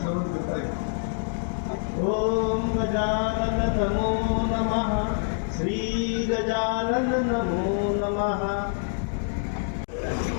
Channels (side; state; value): right; silent; digital silence